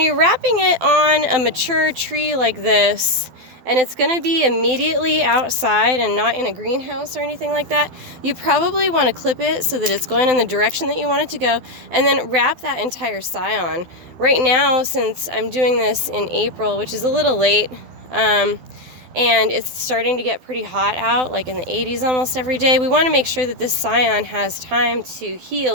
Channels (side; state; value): left; late; 12 ms